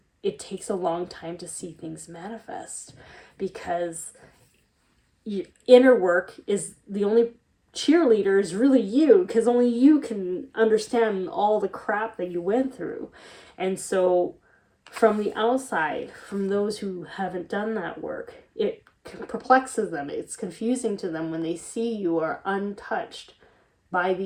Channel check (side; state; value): both; identical; correlation 1.00